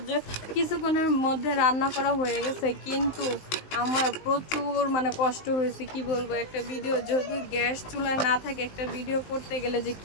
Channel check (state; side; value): late; right; 19 ms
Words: যে কিছুক্ষণের মধ্যে রান্না করা হয়ে গেছে, কিন্তু আমার প্রচুর মানে কষ্ট হয়েছে। কি বলবো, একটা ভিডিও যদি গ্যাস চুলায় না থাকে, একটা ভিডিও করতে গেলে যে